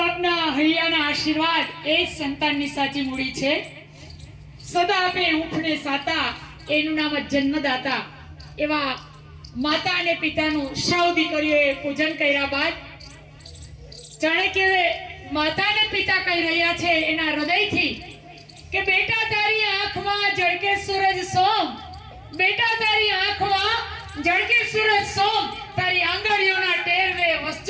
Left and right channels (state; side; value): identical; both; correlation 1.00